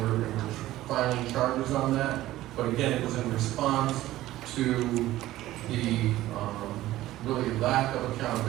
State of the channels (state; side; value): quieter; left; 15.4 dB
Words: we're filing charges on that. But again, it was in response to the really lack of